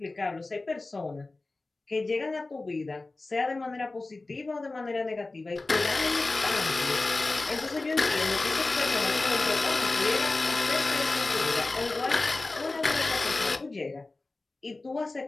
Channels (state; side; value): quieter; right; 3.3 dB